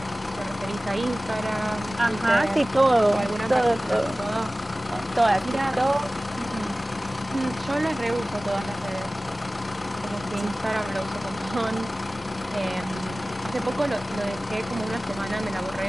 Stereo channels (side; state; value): both; normal; correlation 0.97